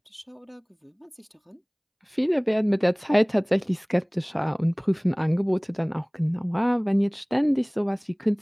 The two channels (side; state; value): both; identical; correlation 1.00